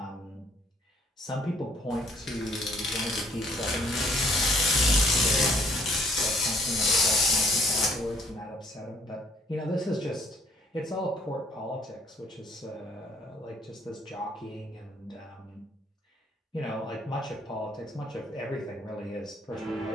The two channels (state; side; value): normal; both; correlation 0.62